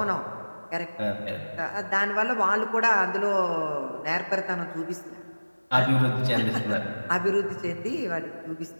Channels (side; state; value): both; inverted; correlation -1.00